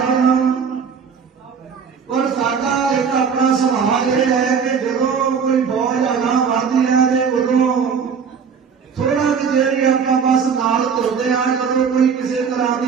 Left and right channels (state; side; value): quieter; left; 6.4 dB